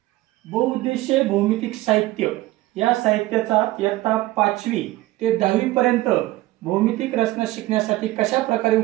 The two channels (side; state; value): left; quieter; 17.9 dB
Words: बहुउद्देशीय भौमितिक साहित्य या साहित्याचा इयत्ता 5वी ते 10वी पर्यंत भौमितिक रचना शिकण्यासाठी कशा प्रकारे